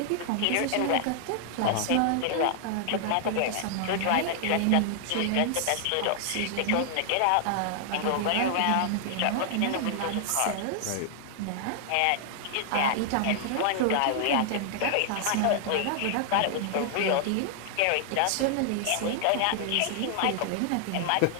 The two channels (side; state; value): both; different; correlation 0.00